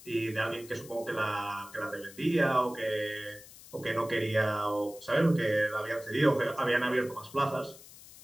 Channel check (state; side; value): noise; left; hiss, 19 dB below the sound